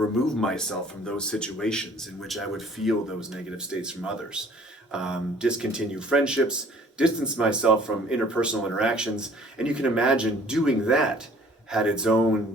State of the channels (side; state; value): both; normal; correlation 0.54